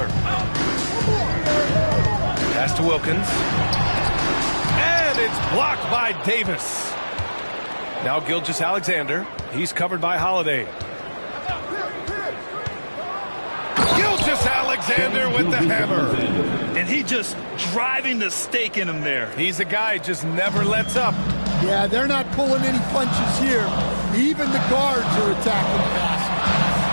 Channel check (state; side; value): inverted; both; correlation -1.00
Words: Pass to Wilkins. And it's blocked by Davis. Now Gilgeous-Alexander. He's covered by Holiday. Gilgeous-Alexander with the hammer. And he just driving the stake in him there. He's a guy just never lets up. Yeah, they're not pulling any punches here. Even the guards are attacking the basket.